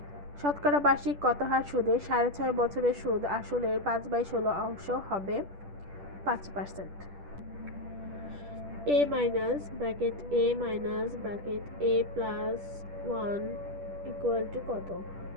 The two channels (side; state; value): left; late; 10 ms